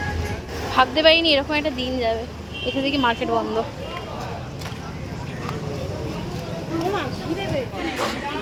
ভাবতে পারিনি এরকম একটা দিন যাবে। এখান থেকে মার্কেট বন্ধ।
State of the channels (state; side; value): identical; both; correlation 1.00